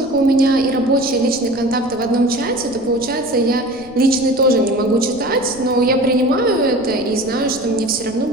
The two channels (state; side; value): noise; left; rumble, 22 dB below the sound